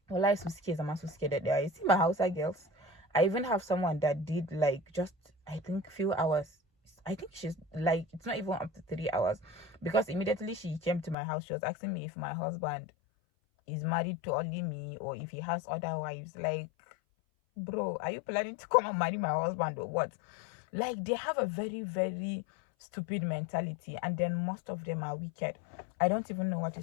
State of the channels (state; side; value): drops out; right; at 11.2 s